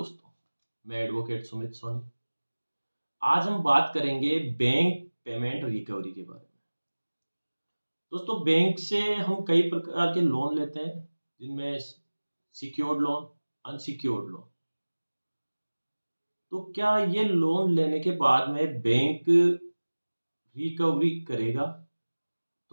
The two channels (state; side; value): inverted; both; correlation -1.00